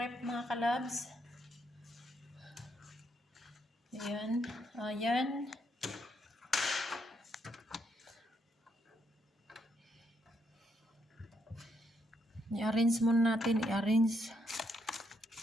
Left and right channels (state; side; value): normal; both; correlation 0.76